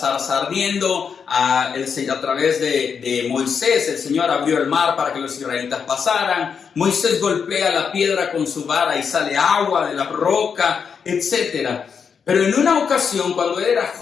ardiendo, a través de Moisés el Señor abrió el mar para que los israelitas pasaran. Moisés golpea la piedra con su vara y sale agua de la roca, etc. Pero en una ocasión, cuando él era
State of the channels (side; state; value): right; quieter; 6.5 dB